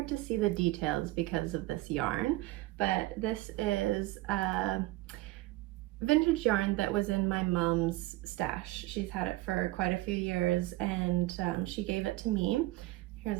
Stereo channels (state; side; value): quieter; left; 18.6 dB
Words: to see the details because of this yarn, but this is a vintage yarn that was in my mom's stash. She's had it for quite a few years, and she gave it to me.